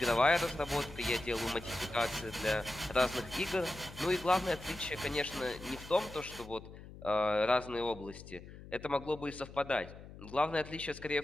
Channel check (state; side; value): noise; left; hum, 15 dB below the sound